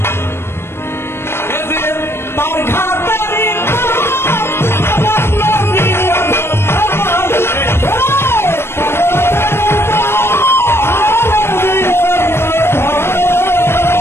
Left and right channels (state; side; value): late; right; 0.12 ms